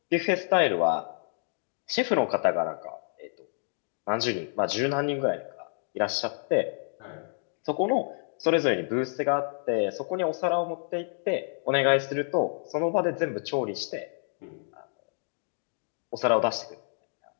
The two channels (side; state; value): right; silent; 59 dB below the other